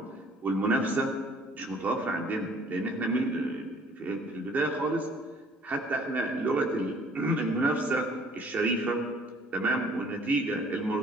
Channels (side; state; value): both; normal; correlation 0.56